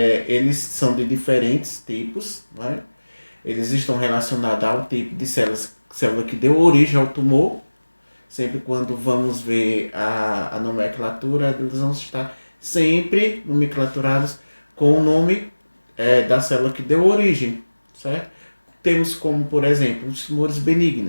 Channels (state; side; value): inverted; both; correlation -1.00